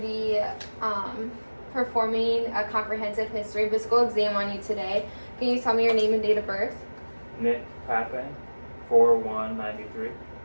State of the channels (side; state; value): both; inverted; correlation -1.00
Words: be performing a comprehensive history physical exam on you today. Can you tell me your name and date of birth? Nick Pape, 4/1/93.